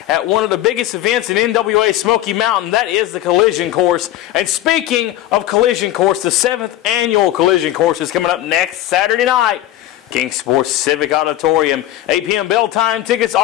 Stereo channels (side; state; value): right; quieter; 13.8 dB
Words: at one of the biggest events in NWA Smoky Mountain. That is the Collision Course. And speaking of Collision Course, the 7th annual Collision Course is coming up next Saturday night. King Sports Civic Auditorium. 8 p.m. bell time. Tickets